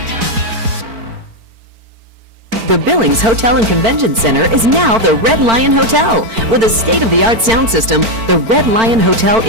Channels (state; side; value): late; left; 4.5 ms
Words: The Billings Hotel and Convention Center is now the Red Lion Hotel. With a state-of-the-art sound system, the Red Lion Hotel